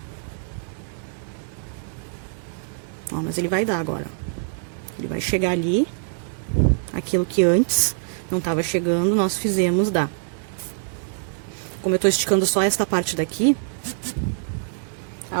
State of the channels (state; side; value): silent; left; digital silence